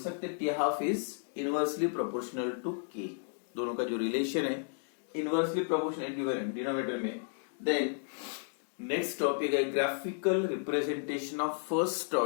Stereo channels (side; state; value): right; silent; digital silence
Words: T half is inversely proportional to K. दोनों का जो रिलेशन है इनवर्सली प्रोपोर्शनल डिनोमिनेटर में। देन नेक्स्ट टॉपिक है graphical representation of first